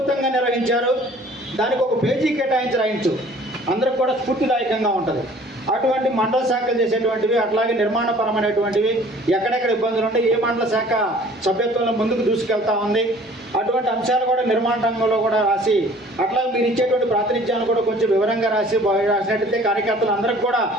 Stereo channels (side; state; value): both; normal; correlation 0.52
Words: నిర్వహించారు. దానికి ఒక పేజీ కేటాయించు అందరికి కూడా స్ఫూర్తిదాయకంగా ఉంటుంది. అటువంటి మండల శాఖలు చేసేటువంటివి, అట్లాగే నిర్మాణపరమైనటువంటివి, ఎక్కడెక్కడ ఇబ్బందులు ఉంటే ఏ మండల శాఖ సభ్యత్వంలో ముందుకు దూసుకెళ్తా ఉంది, అటువంటి అంశాలు కూడా నిర్మాణ రంగంలో కూడా రాసి, అట్లాగే మీరు ఇచ్చేటువంటి ప్రాతినిధ్యాన్ని కూడా కొంచెం వివరంగా రాసినట్టయితే కార్యకర్తలు అందరికి కూడా,